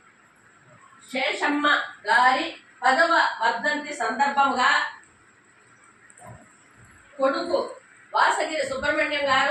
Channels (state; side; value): identical; both; correlation 1.00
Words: శేషమ్మ గారి 10వ వర్ధంతి సందర్భంగా కొడుకు వాసగిరి సుబ్రహ్మణ్యం